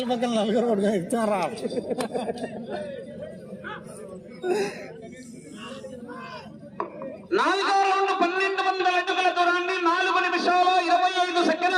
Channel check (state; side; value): identical; both; correlation 1.00